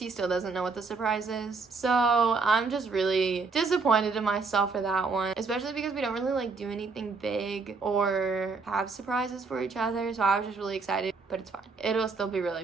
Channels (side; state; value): left; quieter; 4.3 dB